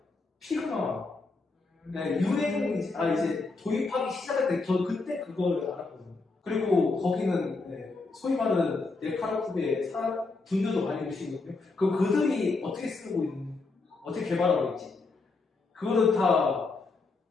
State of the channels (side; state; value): right; quieter; 3.8 dB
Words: 피그마 유행 이제 도입하기 시작할 때 저 그때 그걸 알았거든요. 그리고 거기는 소위 말하는 네카라쿠베 분들도 많이 오시거든요. 그들이 어떻게 쓰고 있는 어떻게 개발하고 있지 그거는 다